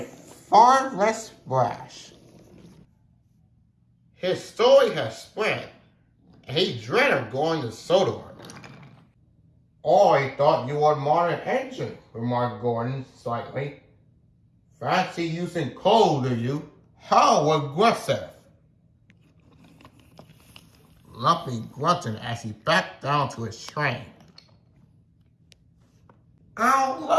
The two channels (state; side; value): identical; both; correlation 1.00